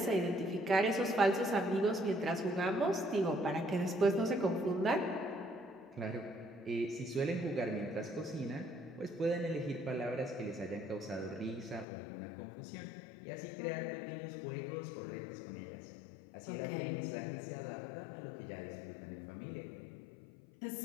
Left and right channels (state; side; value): drops out; right; at 11.9 s